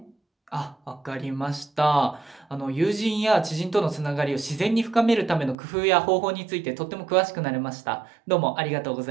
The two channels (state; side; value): drops out; left; at 5.6 s